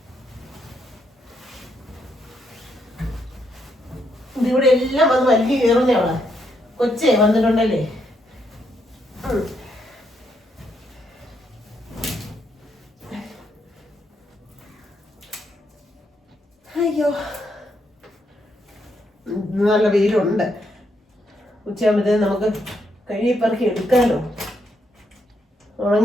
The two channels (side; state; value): both; normal; correlation 0.77